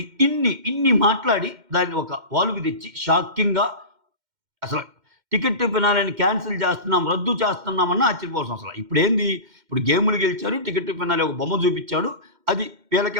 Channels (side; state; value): left; late; 2.1 ms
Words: ఇన్ని మాట్లాడి దాన్ని ఒక వాల్వ్‌కి తెచ్చి షాకింగ్‌గా అసలు టికెట్ ఫినాలేని క్యాన్సిల్ చేస్తున్నాం, రద్దు చేస్తున్నామన్నా ఆశ్చర్యపోవాల్సిన అవసరం. ఇప్పుడు గేములు గెలిచారు. టికెట్ ఫినాలే ఒక బొమ్మ చూపిచ్చాడు. అది వీళ్ళకే